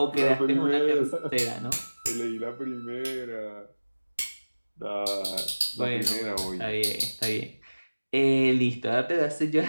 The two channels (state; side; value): inverted; both; correlation -1.00